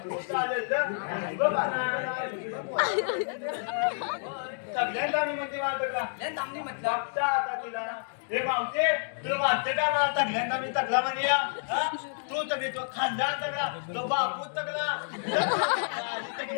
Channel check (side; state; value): right; silent; digital silence